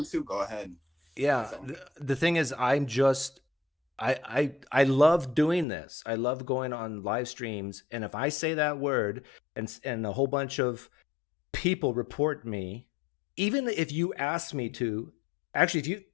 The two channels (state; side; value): drops out; right; at 5.7 s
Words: to, go ahead. Yeah, so. The thing is, I'm just. I love doing this. I love going on live streams, and if I say that word and a whole bunch of people report me, even if you ask me to, actually,